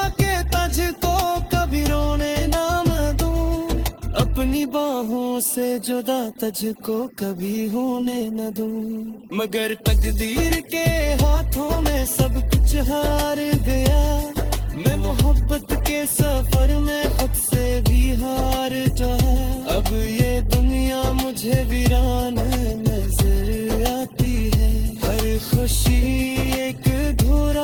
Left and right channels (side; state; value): both; identical; correlation 1.00